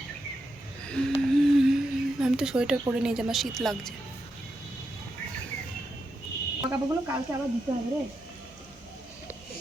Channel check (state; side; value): normal; both; correlation 0.85